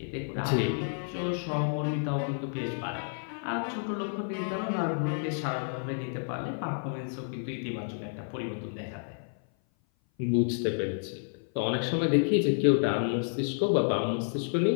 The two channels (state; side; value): silent; right; 56 dB below the other